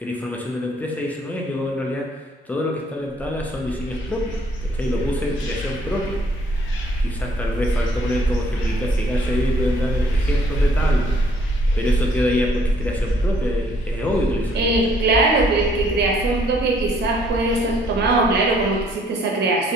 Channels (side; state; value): both; normal; correlation 0.63